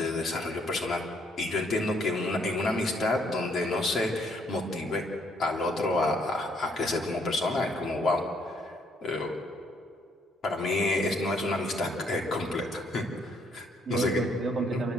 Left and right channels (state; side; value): normal; both; correlation 0.69